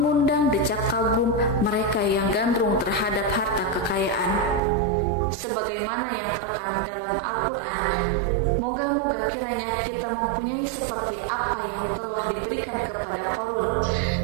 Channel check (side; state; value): left; drops out; at 4.6 s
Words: decak kagum mereka yang gandrung terhadap harta kekayaan. Sebagaimana yang terekam dalam Al-Quran, moga-moga kiranya kita mempunyai seperti apa yang telah diberikan kepada Korun.